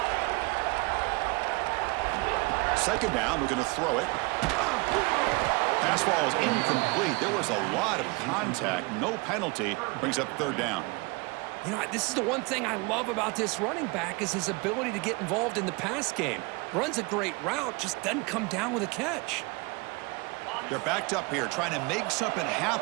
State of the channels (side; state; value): left; quieter; 27.1 dB